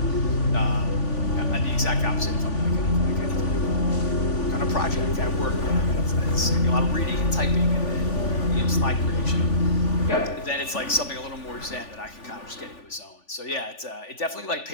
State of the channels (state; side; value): late; right; 3.5 ms